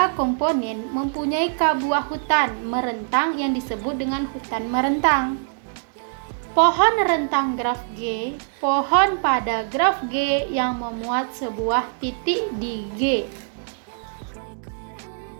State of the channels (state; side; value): silent; left; digital silence